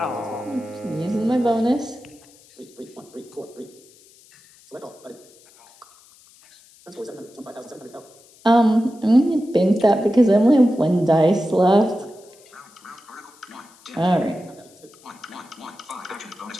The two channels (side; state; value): left; noise; hiss, 27 dB below the sound